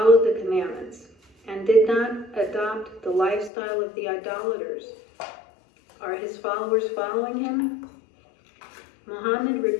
the commandments, and did not adopt the lifestyle of the idolaters. Are his followers following him? Muhammad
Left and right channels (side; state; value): right; drops out; at 3.5 s